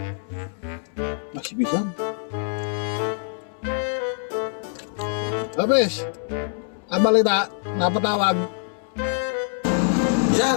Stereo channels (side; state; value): right; silent; 62 dB below the other